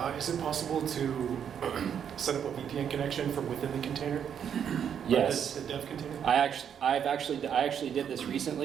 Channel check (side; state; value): left; quieter; 8.3 dB